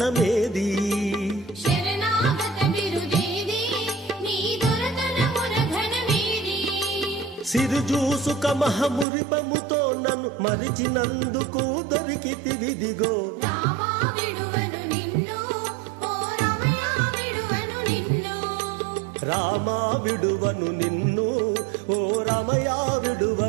శరణాగత బిరుదేది నీ దొరతనమున ఘనమేది సిరుజూసుక మహమురిపముతో నన్ను మరిచినందుకు దొరికితివిదిగో రామా విడువను నిన్ను ఓ రమయ విడువను నిన్ను రామా విడువను నిన్ను ఓ రమయ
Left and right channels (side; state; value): left; drops out; at 9.1 s